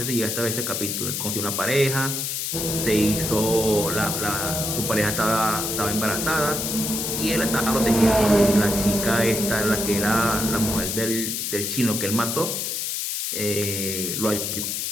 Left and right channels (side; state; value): left; noise; hiss, 2 dB below the sound